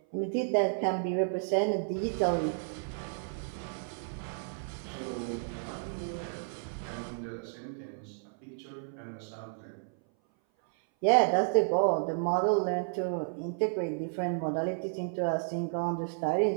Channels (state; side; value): silent; left; 56 dB below the other